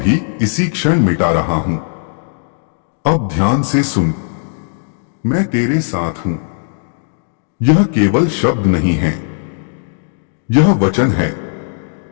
इसी क्षण मिटा रहा हूं। अब ध्यान से सुन, मैं तेरे साथ हूं। यह केवल शब्द नहीं है, यह वचन है,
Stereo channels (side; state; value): right; silent; digital silence